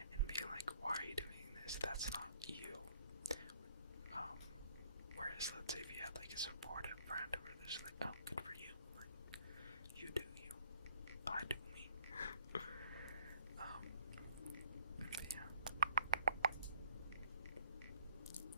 and being like, why are you doing this? That's not you. Whereas, let's say if you had, like, a supportive friend who was just like, oh, good for you. Like, you do you. I do me. But yeah.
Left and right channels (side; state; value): both; inverted; correlation -0.63